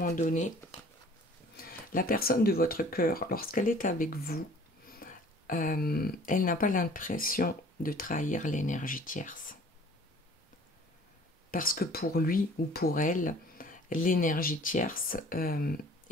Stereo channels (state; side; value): normal; both; correlation 0.50